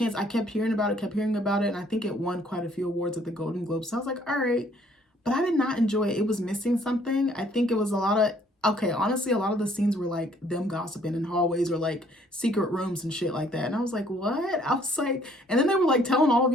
I kept hearing about it, and I think it won quite a few awards at the Golden Globes. So I was like, all right. But I did not enjoy it. It was missing something. I think it was a lot of, honestly, a lot of the scenes were like them gossiping in hallways or like secret rooms and shit like that. And I was like, what? I was like, and then they were like telling all of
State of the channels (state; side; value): normal; both; correlation 0.62